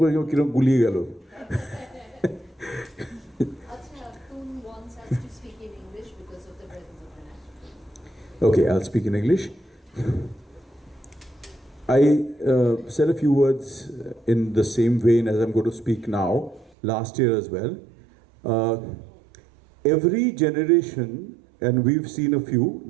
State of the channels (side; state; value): left; drops out; at 16.7 s